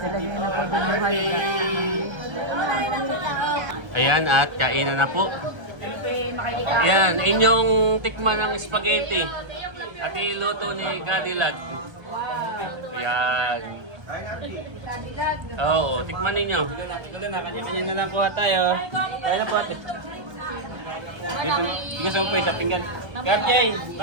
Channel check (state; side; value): late; left; 1.3 ms